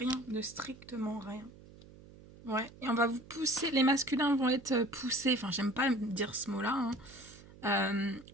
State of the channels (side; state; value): right; noise; hum, 20 dB below the sound